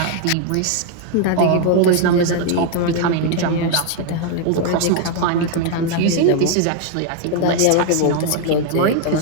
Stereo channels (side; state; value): both; different; correlation 0.00